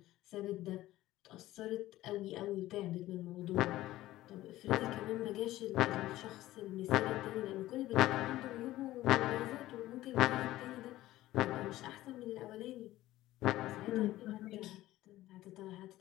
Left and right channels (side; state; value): right; quieter; 15.8 dB